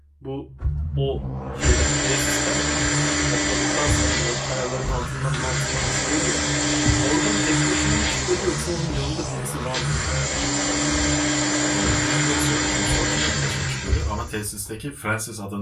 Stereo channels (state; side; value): identical; both; correlation 1.00